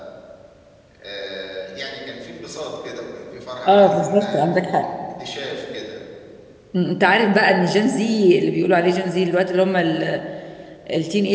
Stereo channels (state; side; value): identical; both; correlation 1.00